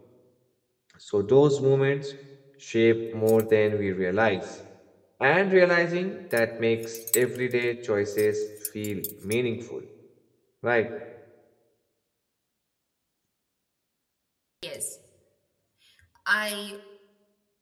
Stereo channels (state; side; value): identical; both; correlation 1.00